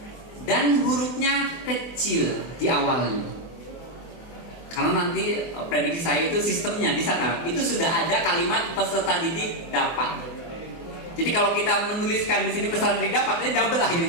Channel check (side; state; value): right; late; 24 ms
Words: Dan hurufnya kecil di awalnya. Karena nanti prediksi saya itu sistemnya di sana itu sudah ada kalimat peserta didik dapat. Jadi kalau kita menuliskan di sini peserta didik dapat, ini double